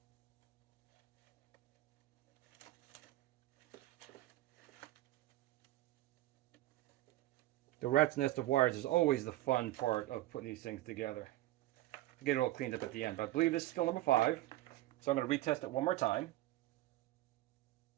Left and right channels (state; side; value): quieter; left; 16.3 dB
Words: The rat's nest of wires is always the fun part of putting these things together. Get it all cleaned up at the end. But I believe this is still number 5. So I'm going to retest it one more time.